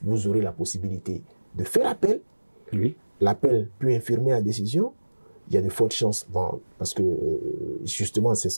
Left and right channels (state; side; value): inverted; both; correlation -1.00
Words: Vous aurez la possibilité de faire appel. Oui. L'appel peut infirmer la décision. Il y a de fortes chances, parce que justement,